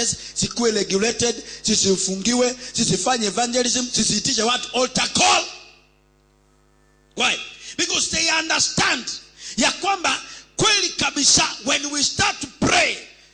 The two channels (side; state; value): both; identical; correlation 1.00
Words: sikuwe regulated, sisifungiwe, sisifanye evangelism, sisiitishe watu altar call. Why? Because they understand ya kwamba kweli kabisa, when we start to pray,